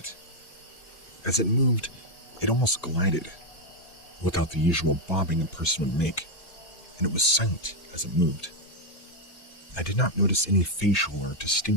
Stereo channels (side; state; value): right; late; 1.8 ms